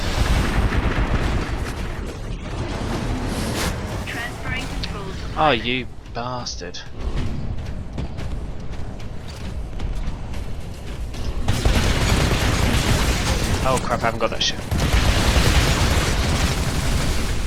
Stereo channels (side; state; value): both; identical; correlation 1.00